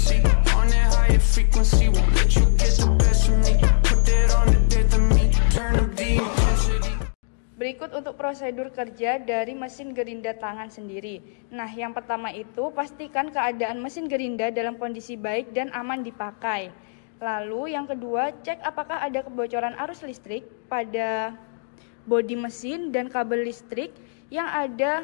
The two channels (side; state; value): right; silent; digital silence